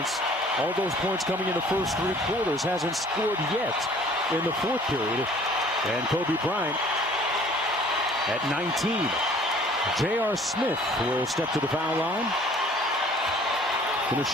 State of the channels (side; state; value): both; normal; correlation 0.53